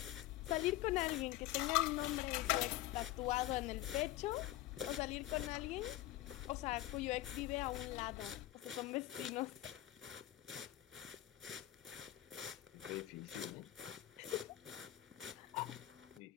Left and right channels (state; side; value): quieter; right; 15.5 dB